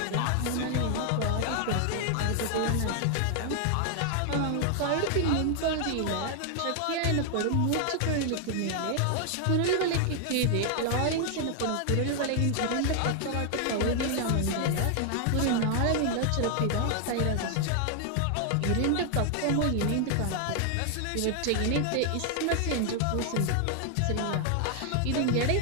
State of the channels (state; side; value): different; both; correlation 0.00